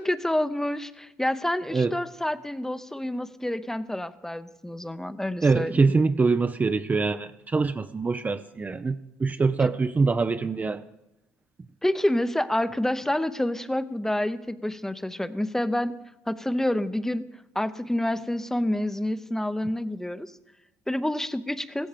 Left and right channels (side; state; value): both; normal; correlation 0.93